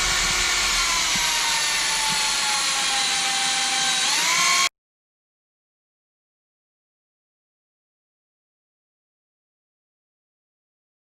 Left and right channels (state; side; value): identical; both; correlation 1.00